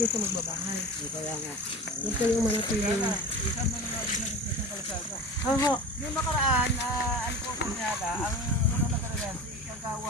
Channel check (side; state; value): both; normal; correlation 0.33